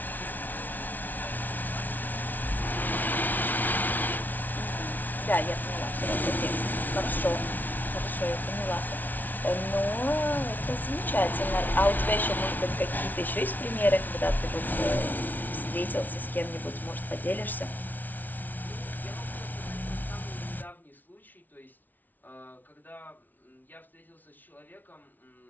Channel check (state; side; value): late; right; 0.082 ms